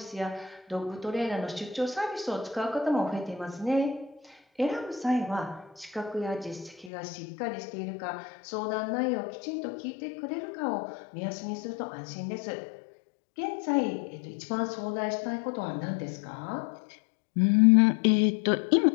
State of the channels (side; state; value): right; drops out; at 6.9 s